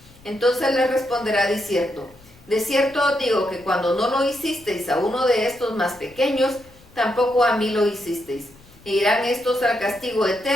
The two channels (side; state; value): left; noise; rumble, 26 dB below the sound